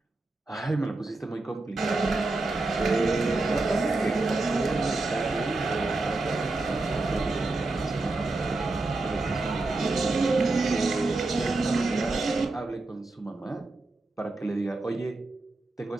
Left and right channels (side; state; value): left; quieter; 3.2 dB